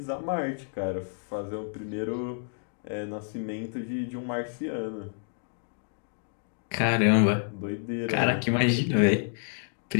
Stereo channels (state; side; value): silent; right; digital silence